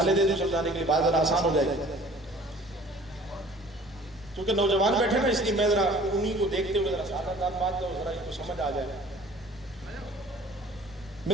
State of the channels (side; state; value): right; noise; rumble, 25 dB below the sound